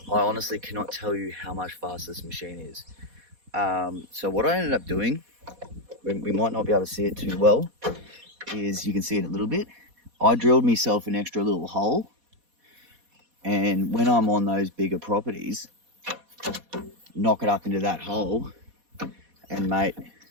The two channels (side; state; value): left; late; 4.1 ms